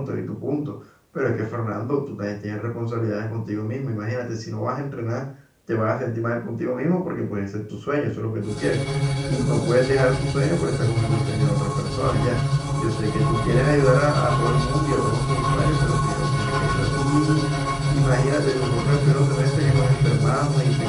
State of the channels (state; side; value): identical; both; correlation 1.00